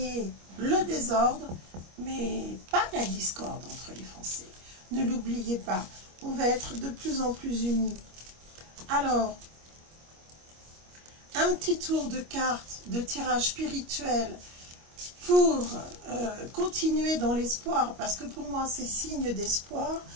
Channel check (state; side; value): late; left; 25 ms